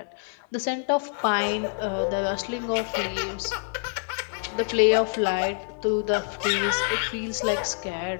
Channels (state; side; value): silent; right; digital silence